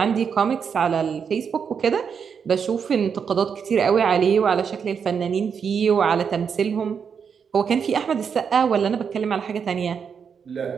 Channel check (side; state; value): left; quieter; 6.7 dB